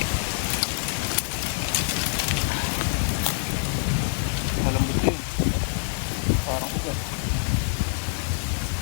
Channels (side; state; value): right; silent; 57 dB below the other